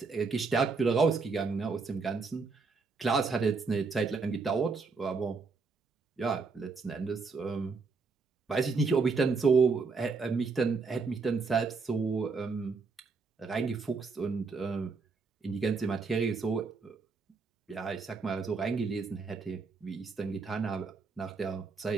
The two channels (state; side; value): quieter; left; 4.5 dB